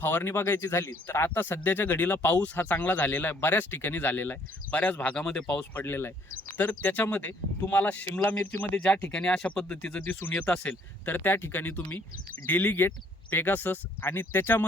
फवारणी बघायची झाली तर आता सध्याच्या घडीला पाऊस हा चांगला झालेला आहे, बऱ्याच ठिकाणी झालेला आहे, बऱ्याच भागामध्ये पाऊस पडलेला आहे. तर त्याच्यामध्ये तुम्हाला शिमला मिरचीमध्ये ज्या ठिकाणी अशा पद्धतीचं दिसून येत असेल तर त्या ठिकाणी तुम्ही डेलिगेट, पेगासस आणि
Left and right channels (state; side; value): normal; both; correlation 0.63